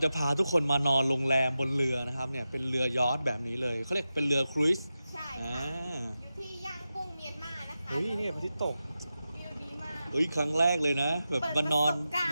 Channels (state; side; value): inverted; both; correlation -0.92